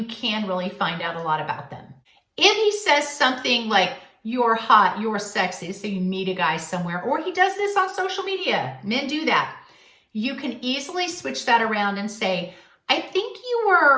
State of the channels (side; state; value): both; identical; correlation 1.00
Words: can really find out a lot about them. If he says something like, you're hot, you're sexy, so you meet a guy somewhere, or he does this on social media, men do that, you can easily switch that around and say, I think you